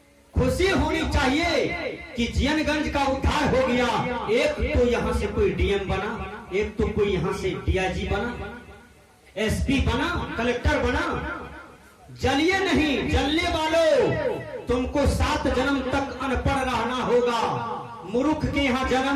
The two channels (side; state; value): both; identical; correlation 1.00